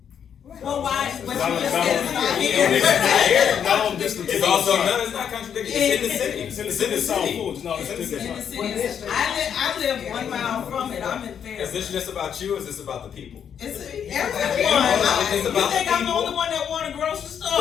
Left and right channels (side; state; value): right; quieter; 8.2 dB